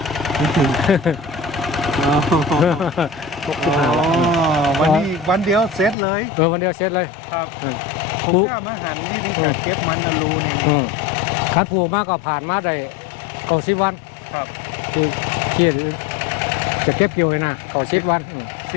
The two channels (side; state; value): right; drops out; at 6.0 s